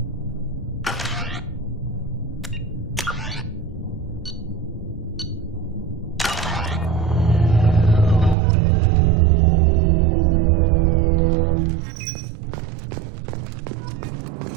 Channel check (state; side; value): drops out; left; at 8.3 s